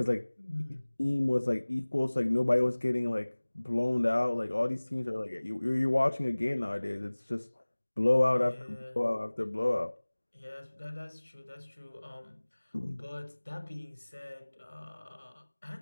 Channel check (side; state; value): both; inverted; correlation -1.00